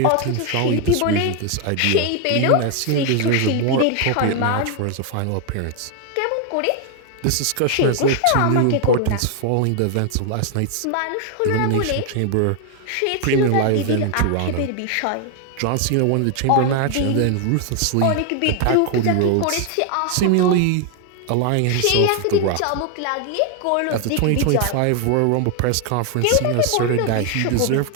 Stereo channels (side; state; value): both; different; correlation 0.00